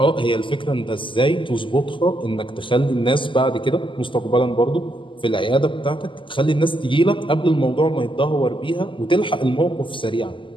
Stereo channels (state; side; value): late; right; 0.25 ms